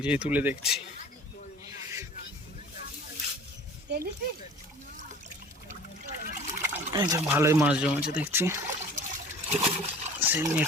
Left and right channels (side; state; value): both; normal; correlation 0.45